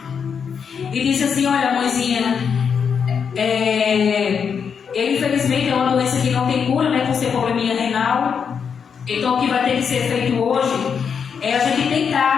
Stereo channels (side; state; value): right; quieter; 6.7 dB